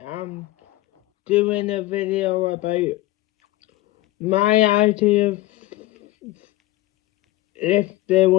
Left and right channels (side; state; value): right; quieter; 17.9 dB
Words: I'm doing a video about my idea if they